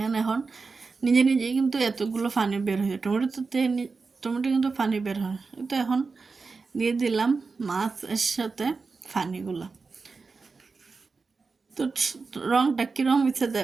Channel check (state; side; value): quieter; left; 4.4 dB